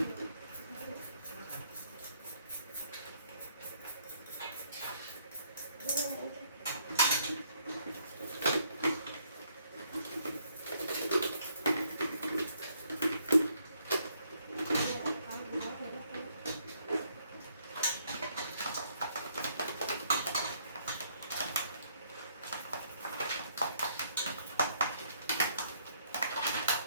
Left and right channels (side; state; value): both; inverted; correlation -0.69